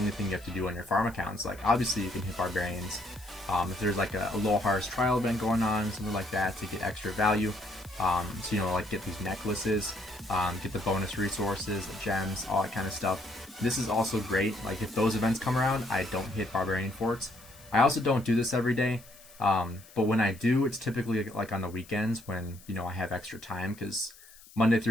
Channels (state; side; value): noise; left; hiss, 22 dB below the sound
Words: thing you have to do on your farm accounts. Like, obviously you can hit barbarians if there's like a low harvest trial event going on, something like that, to get extra value. So, you know, like get these necklaces, get the bonus resources, the gems, all that kind of stuff. This is also great. Like, if those events come around, I don't hit barbarian forts. I also don't do this every day, but when I do, it's typically like on the weekends when, you know, I have extra time, because Monday